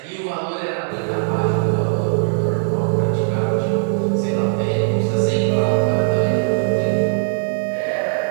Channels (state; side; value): silent; left; digital silence